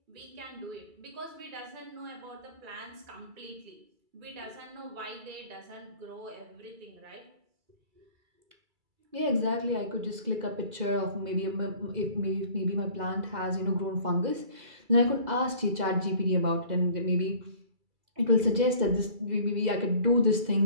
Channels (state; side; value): late; left; 2.3 ms